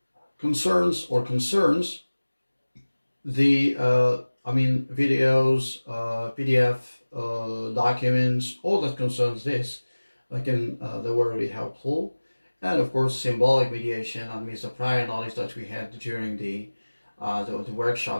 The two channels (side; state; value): both; inverted; correlation -1.00